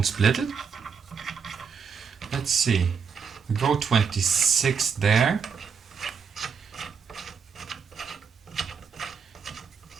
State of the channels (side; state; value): left; quieter; 6.2 dB